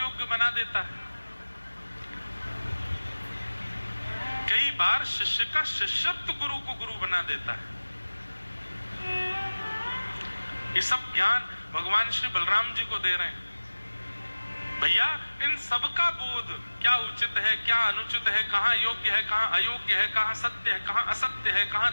बना देता है। कई बार शिष्य का शिष्यत्व गुरु को गुरु बना देता है। ये सब ज्ञान भगवान श्री बलराम जी को दे रहे हैं। भैया इन सब का बोध, क्या उचित है, क्या अनुचित है, कहां योग्य है, कहां अयोग्य है, कहां सत्य है, कहां असत्य है, कहां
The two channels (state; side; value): inverted; both; correlation -1.00